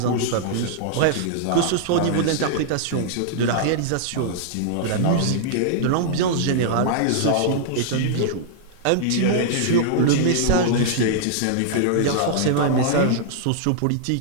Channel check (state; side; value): different; both; correlation -0.02